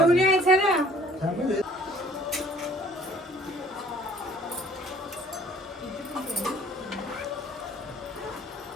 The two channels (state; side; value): normal; both; correlation 0.54